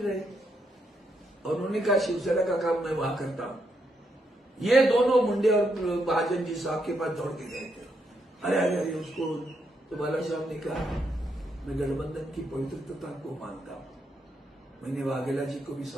और उन्होंने कहा शिवसेना का काम मैं वहां करता हूं। ये दोनों मुंडे और महाजन जी साहब के पास दौड़ के गए थे। अरे अरे अरे उसको तो बाला साहब ने कहा मैं गठबंधन की पवित्रता को मानता हूं, मैंने वाघेला जी को भी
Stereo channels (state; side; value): normal; both; correlation 0.79